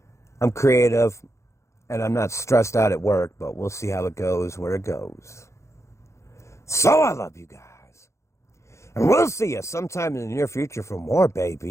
I'm creative and I'm not stressed out at work, but we'll see how it goes, where it goes. So I love you guys. And we'll see you sometime in the near future for more,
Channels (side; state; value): right; late; 0.14 ms